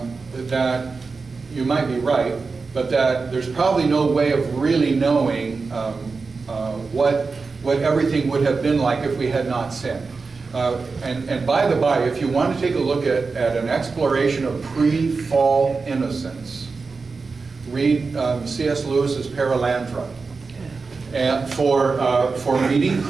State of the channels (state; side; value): quieter; left; 4.4 dB